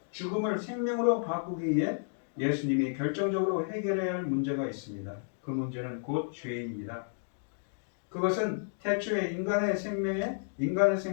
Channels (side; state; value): right; silent; digital silence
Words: 죽음을 생명으로 바꾸기 위해 예수님이 결정적으로 해결해야 할 문제가 있습니다. 그 문제는 곧 죄입니다. 그것은 태초에 인간의